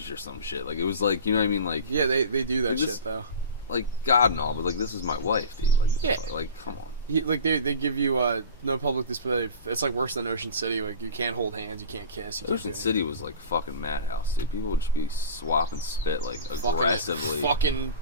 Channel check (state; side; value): inverted; both; correlation -0.34